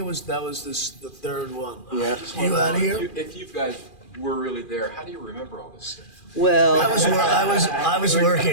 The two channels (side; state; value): right; late; 2.4 ms